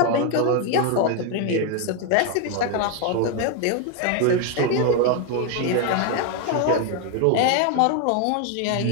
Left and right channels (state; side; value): different; both; correlation 0.01